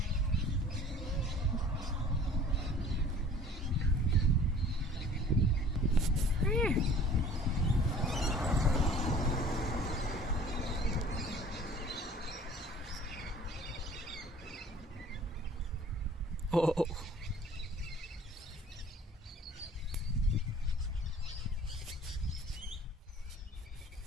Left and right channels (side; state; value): both; normal; correlation 0.49